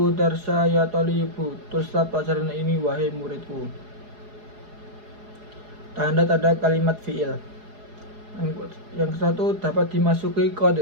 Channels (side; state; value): left; late; 4.8 ms